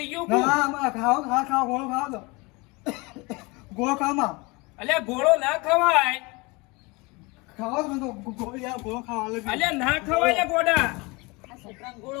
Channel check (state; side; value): quieter; right; 26.0 dB